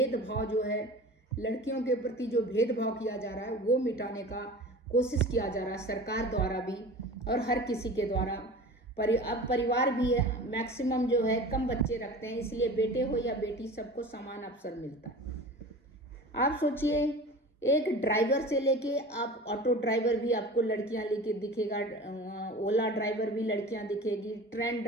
जो है लड़कियों के प्रति जो भेदभाव किया जा रहा है वो मिटाने का कोशिश किया जा रहा है सरकार द्वारा भी और हर किसी के द्वारा। अब परिवार भी है मैक्सिमम जो है कम बच्चे रखते हैं, इसलिए बेटे हो या बेटी सबको समान अवसर मिलता है। आप सोचिए, एक ड्राइवर से लेके आप ऑटो ड्राइवर भी आपको लड़कियां लेके दिखेगा, ओला ड्राइवर भी लड़कियां दिखेगी, ट्रेन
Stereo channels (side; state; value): both; normal; correlation 0.37